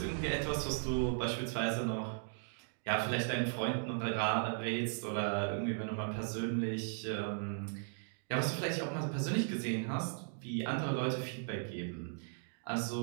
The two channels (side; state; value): left; silent; digital silence